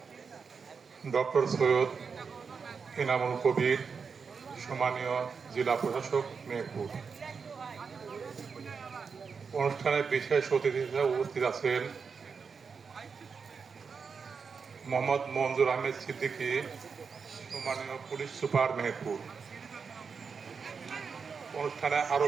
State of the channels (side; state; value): left; quieter; 5.6 dB